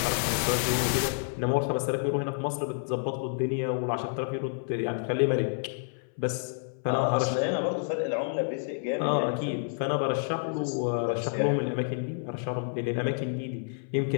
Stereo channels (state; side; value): silent; right; 59 dB below the other